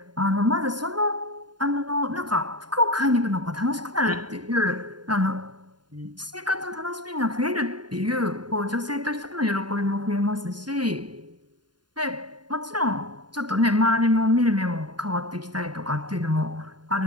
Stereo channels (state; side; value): late; left; 0.71 ms